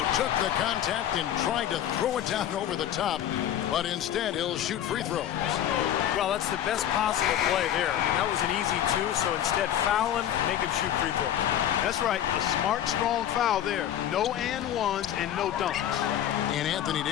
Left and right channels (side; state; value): right; quieter; 11.0 dB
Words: took the contact and tried to throw it down over the top, but instead he'll shoot free throws. Well, that's the best possible play there. I mean, that was an easy 2, so instead foul him, make him shoot free throws. That's right, a smart, strong foul there. No and ones and no dunks. And Anthony